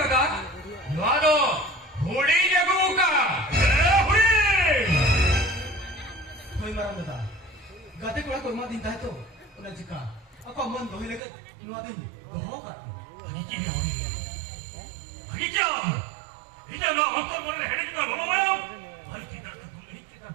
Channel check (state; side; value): drops out; left; at 11.2 s